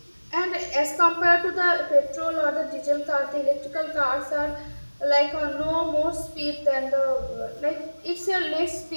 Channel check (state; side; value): inverted; both; correlation -1.00